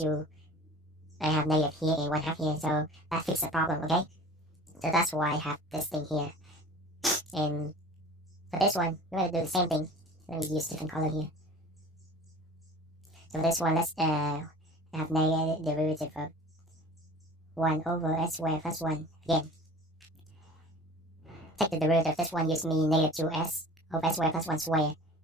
I have negative here and 1 half here, so that fixes the problem, okay? So that's why I have this thing here. And for this one, we're going to do the same thing. Let me use different color here. So for this one, let's have negative derivative of 1 over s squared plus 1 again. Take the derivative of this one gives me -2s over s squared plus 1 squared.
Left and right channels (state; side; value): normal; both; correlation 0.42